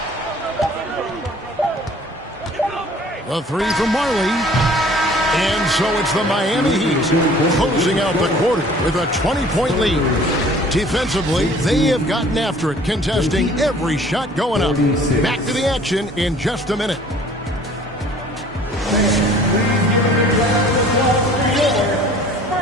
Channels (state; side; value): normal; both; correlation 0.51